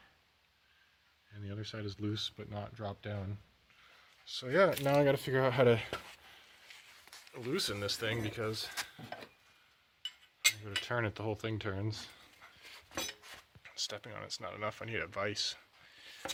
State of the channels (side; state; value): both; identical; correlation 1.00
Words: And the other side is loose but not dropped down. So yeah, now I gotta figure out how to loosen this thing because when I go to turn it, the whole thing turns. Stepping on it's not enough, I need a vise.